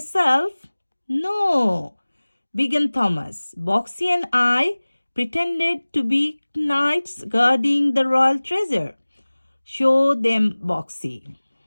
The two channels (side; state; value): both; inverted; correlation -1.00